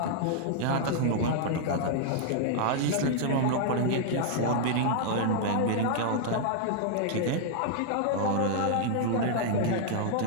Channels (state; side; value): different; both; correlation -0.01